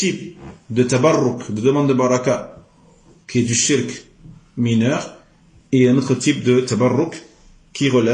de tabarruk, de demande de baraka, qui est du shirk mineur, et un autre type de tabarruk qui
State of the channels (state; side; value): identical; both; correlation 1.00